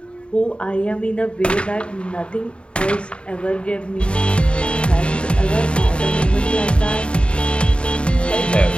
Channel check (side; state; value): right; late; 0.056 ms